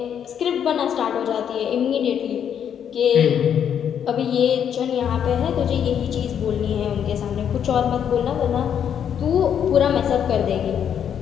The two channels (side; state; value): right; quieter; 8.7 dB